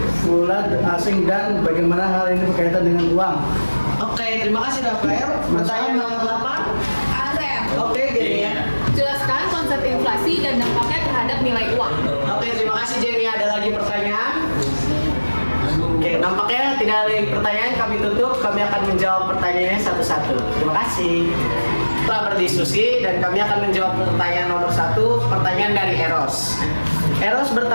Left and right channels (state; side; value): inverted; both; correlation -1.00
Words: asing dan bagaimana hal ini berkaitan dengan uang? Oke, terima kasih Rafael. Pertanyaan nomor 8. Oke, gini ya. Jelaskan konsep inflasi dan dampaknya terhadap nilai uang. Oke, terima kasih Jenny. Ada lagi pertanyaan? Oke, nampaknya tidak ada lagi pertanyaan. Kami tutup. Kami akan menjawab pertanyaannya satu-satu. Terima kasih. Setelah berdiskusi dan kami akan menjawab pertanyaan nomor 1. Pertanyaan dari Eros. Eros